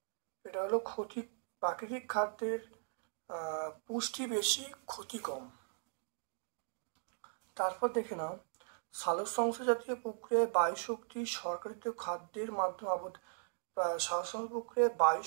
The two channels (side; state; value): left; silent; digital silence